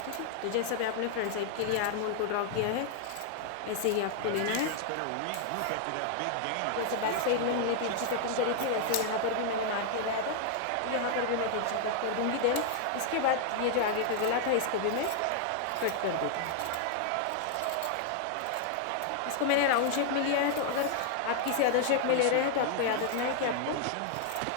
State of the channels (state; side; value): different; both; correlation 0.00